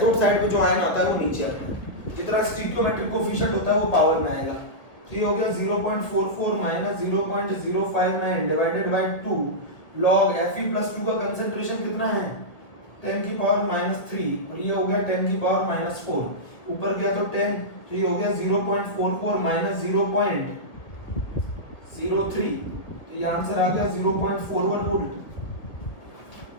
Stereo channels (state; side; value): late; right; 1.5 ms